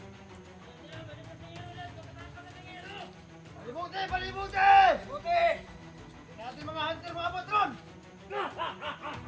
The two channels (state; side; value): identical; both; correlation 1.00